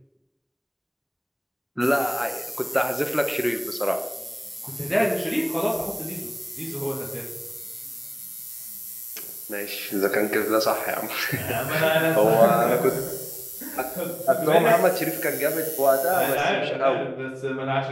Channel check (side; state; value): both; identical; correlation 1.00